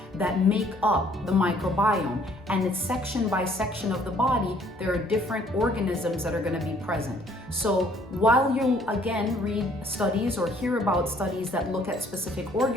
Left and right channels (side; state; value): both; normal; correlation 0.61